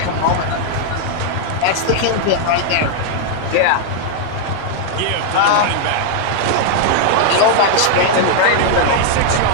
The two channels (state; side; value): different; both; correlation -0.01